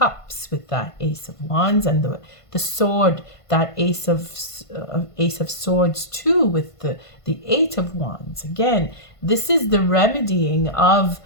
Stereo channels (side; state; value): right; late; 1.5 ms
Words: with that Ace of Wands, and the sword, that Ace of Swords too, with the Eight of Wands. Again, this is the remedying of